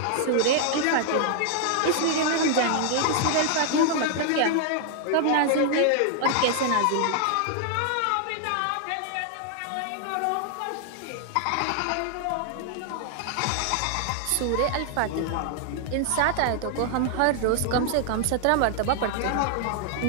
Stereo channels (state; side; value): different; both; correlation 0.00